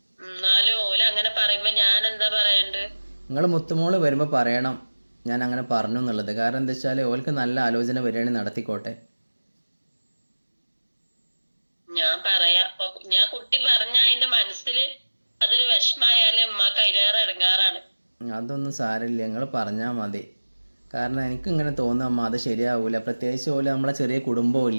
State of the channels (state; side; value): inverted; both; correlation -1.00